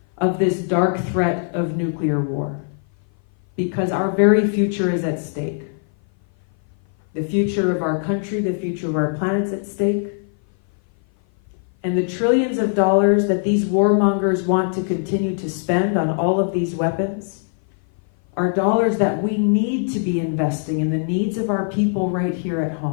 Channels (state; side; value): silent; right; 56 dB below the other